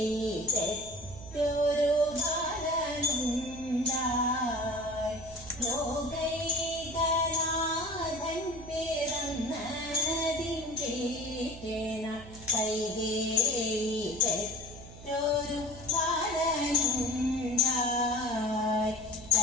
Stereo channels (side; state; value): right; noise; hum, 16 dB below the sound